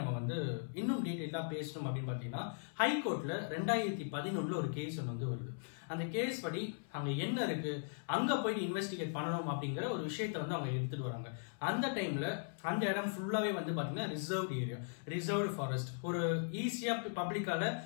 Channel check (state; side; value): silent; right; 52 dB below the other